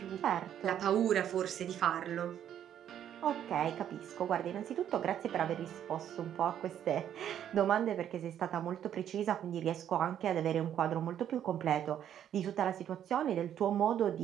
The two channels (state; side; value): quieter; left; 10.1 dB